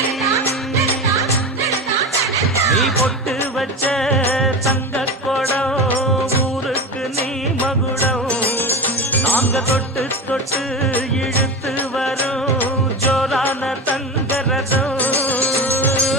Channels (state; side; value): normal; both; correlation 0.24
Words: நீ பொட்டு வச்ச தங்க கொடம் ஊருக்கு நீ மகுடம் நாங்க தொட்டு தொட்டு இழுத்து வரும் ஜோரான தங்கரதம்